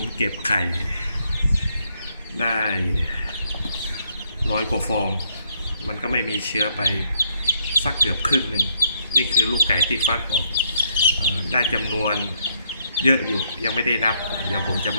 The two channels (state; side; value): inverted; both; correlation -0.74